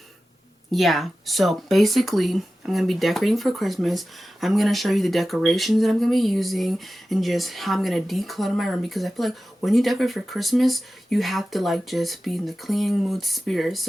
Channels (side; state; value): both; normal; correlation 0.94